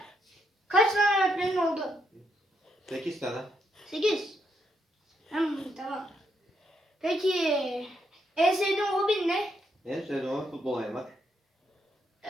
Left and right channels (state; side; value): normal; both; correlation 0.78